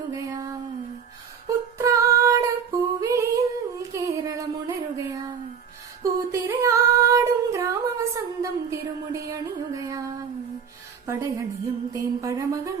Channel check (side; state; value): left; quieter; 6.9 dB